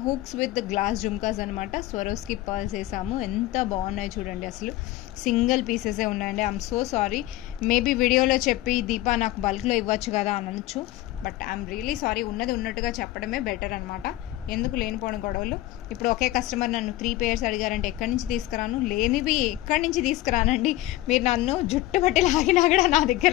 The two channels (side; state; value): right; quieter; 16.3 dB